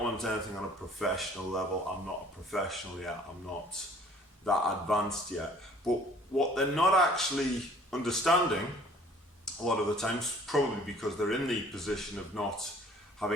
want anything on a professional level, I'm not a professional yet, I'm not that advanced yet. But what they're not actually understanding a lot of the times, probably because they're in the position of not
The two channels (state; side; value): normal; both; correlation 0.55